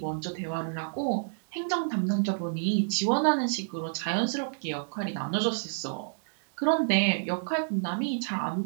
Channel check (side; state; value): left; silent; 58 dB below the other